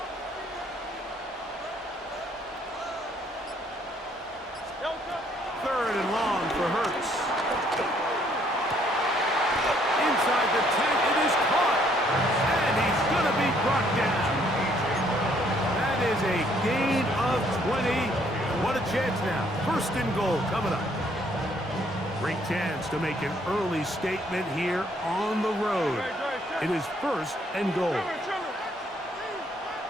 Third and long for Hurts. Inside the 10, it is caught. And he's going to be brought down. That is a gain of 20. What a chance now. 1st and goal coming up. Great chance to make an early statement here on the road. It is 1st and goal.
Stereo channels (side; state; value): both; normal; correlation 0.66